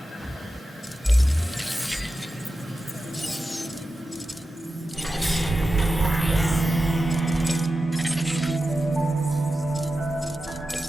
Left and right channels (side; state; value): both; normal; correlation 0.92